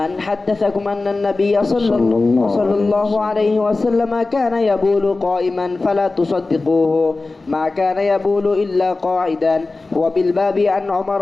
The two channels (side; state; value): right; quieter; 3.5 dB